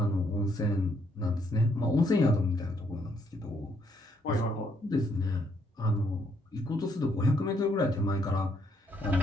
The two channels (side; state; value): both; normal; correlation 0.71